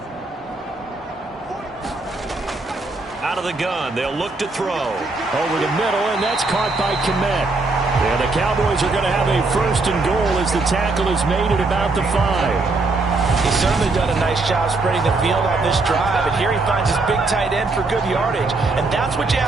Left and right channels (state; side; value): quieter; left; 3.5 dB